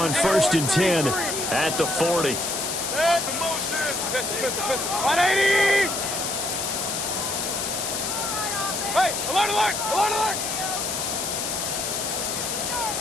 1st and 10 at the 40. 180! Hey, alert, alert, alert, alert!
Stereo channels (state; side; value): noise; left; hiss, 2 dB below the sound